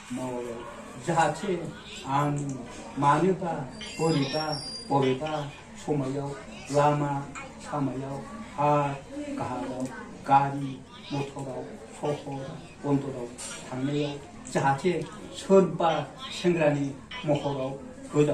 मावो जाहाथे आं मानोबा बबेबा समायाव लामा सामायाव हा गाहायाव गारि मटराव सहर बन्दराव थांनायाव जाहाथे सोरबा सेंग्रानि महराव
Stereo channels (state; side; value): identical; both; correlation 1.00